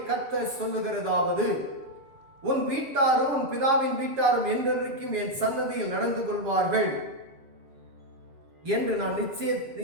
கர்த்தர் சொல்லுகிறதாவது, உன் வீட்டாரும் உன் பிதாவின் வீட்டாரும் என்றென்றைக்கும் என் சன்னதியில் நடந்து கொள்வார்கள் என்று நான்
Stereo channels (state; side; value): late; left; 7.2 ms